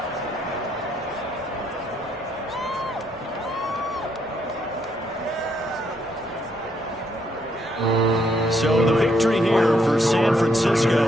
So the victory here for San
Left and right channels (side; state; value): both; normal; correlation 0.74